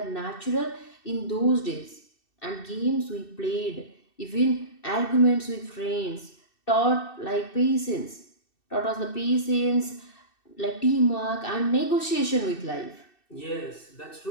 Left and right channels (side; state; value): right; late; 2.6 ms